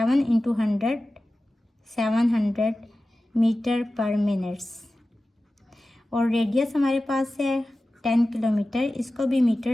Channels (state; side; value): normal; both; correlation 0.95